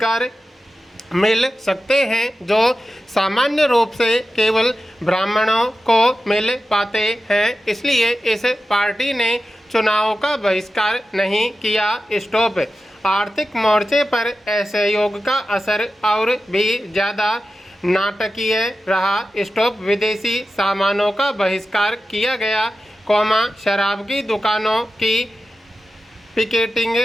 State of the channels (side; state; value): both; normal; correlation 0.93